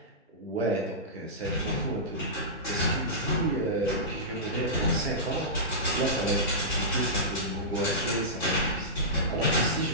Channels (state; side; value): normal; both; correlation -0.16